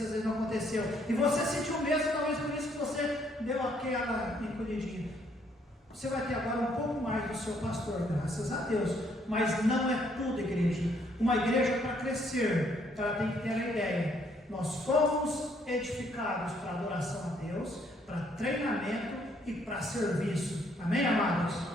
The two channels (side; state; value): both; normal; correlation 0.68